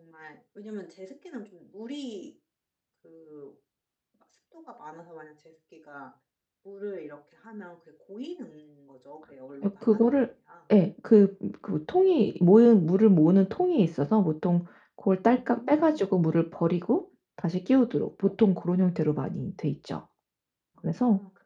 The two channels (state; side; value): identical; both; correlation 1.00